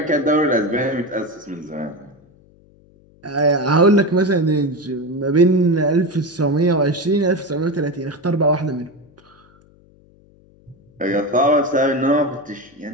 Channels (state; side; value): noise; left; hum, 29 dB below the sound